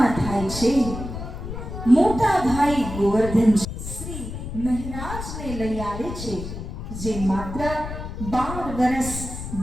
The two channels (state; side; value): noise; left; rumble, 8 dB below the sound